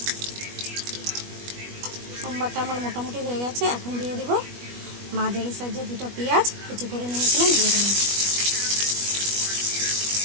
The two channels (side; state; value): left; late; 21 ms